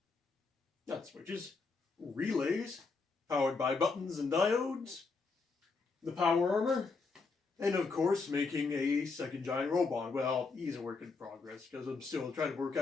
Not switches. Relays powered by buttons and diodes. The power armor. And of course, making a second giant robot. Well, he's a work in progress because I'm still trying to work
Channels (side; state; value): right; quieter; 4.3 dB